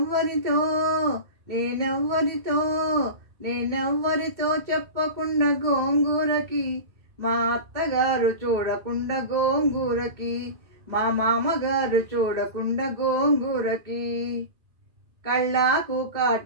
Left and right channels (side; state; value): left; late; 1.8 ms